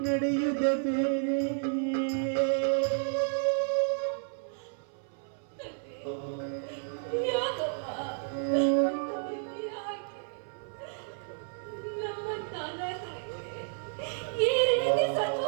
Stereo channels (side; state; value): left; silent; 57 dB below the other